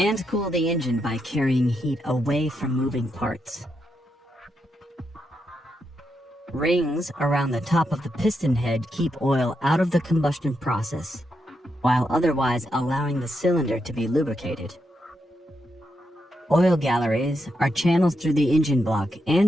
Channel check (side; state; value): both; normal; correlation 0.83